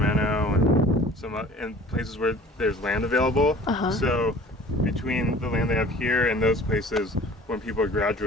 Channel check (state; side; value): normal; both; correlation 0.47